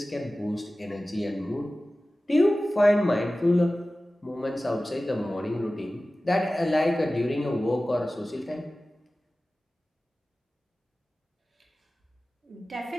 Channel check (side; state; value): both; normal; correlation 0.96